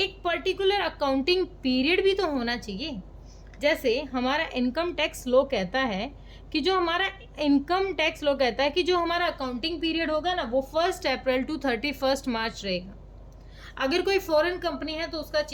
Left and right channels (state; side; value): identical; both; correlation 1.00